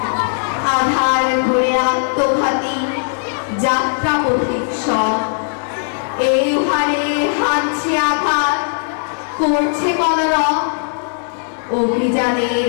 আধার ঘুরে আত্মঘাতী যাত্রা পথিক সব এই হারে হানছে আঘাত করছে কলরব অভিযানের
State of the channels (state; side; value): silent; right; digital silence